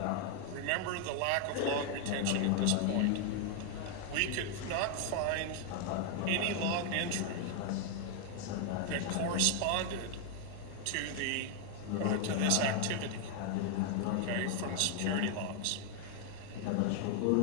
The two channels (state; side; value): different; both; correlation 0.00